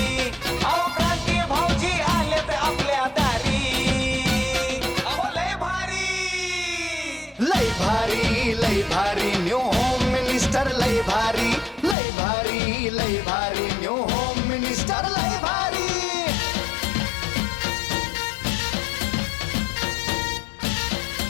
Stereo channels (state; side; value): drops out; right; at 12.0 s